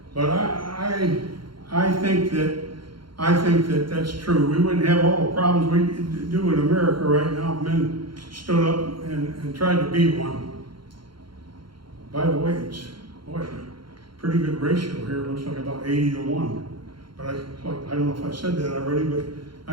But I think that that's true. We wouldn't have all the problems we do in America right now if men stood up and tried to be one. By the way, it's pretty good ratio here. It looks like about 80-1. But I don't know if I said that already, but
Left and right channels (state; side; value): late; left; 0.73 ms